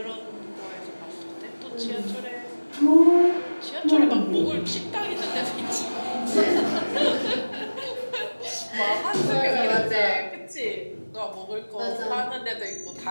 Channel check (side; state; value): both; inverted; correlation -1.00